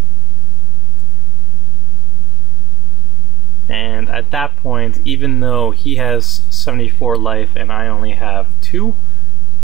And at that point, even though he has 74 life and I only have 2,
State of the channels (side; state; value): both; normal; correlation 0.02